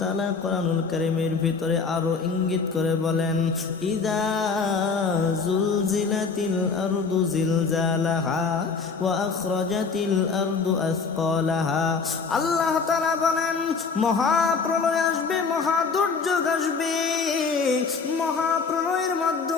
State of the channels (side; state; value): right; quieter; 5.0 dB